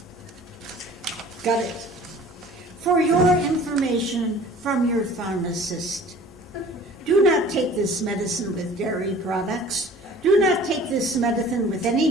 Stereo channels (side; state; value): both; normal; correlation 0.47